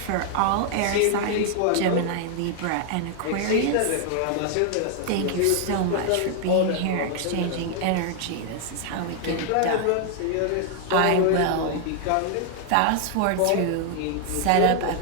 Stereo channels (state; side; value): different; both; correlation 0.00